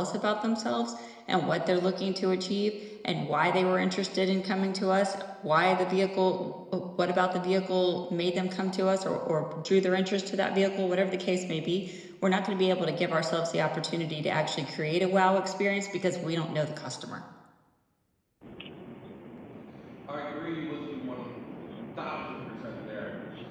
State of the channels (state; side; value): identical; both; correlation 1.00